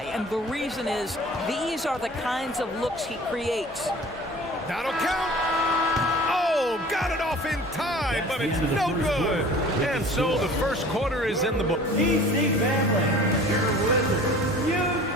and the reason is these are the kinds of looks he creates. That'll count. Oh, got it off in time, but it's no good. And so the first quarter is in the book. DC family, your Wizards,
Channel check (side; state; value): both; normal; correlation 0.45